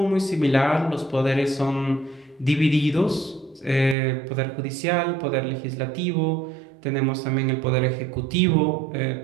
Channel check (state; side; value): drops out; left; at 4.0 s